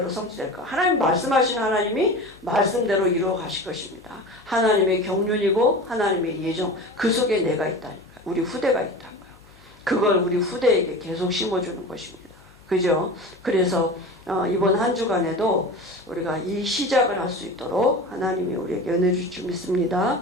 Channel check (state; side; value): noise; left; hum, 27 dB below the sound